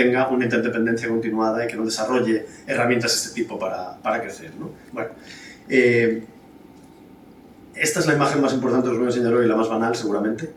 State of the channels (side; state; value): both; identical; correlation 1.00